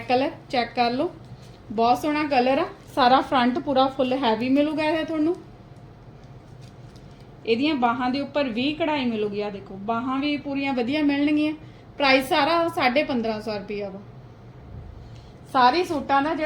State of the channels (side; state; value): both; identical; correlation 1.00